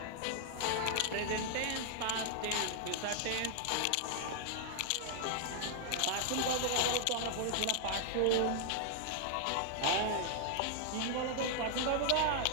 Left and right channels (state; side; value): different; both; correlation 0.00